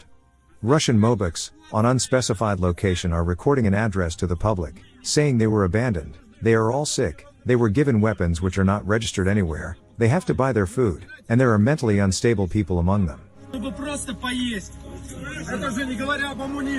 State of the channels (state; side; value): identical; both; correlation 1.00